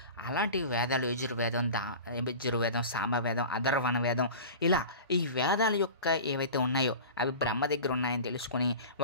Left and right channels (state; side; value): inverted; both; correlation -0.35